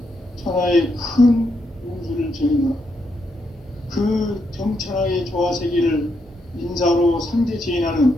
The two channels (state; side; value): normal; both; correlation 0.79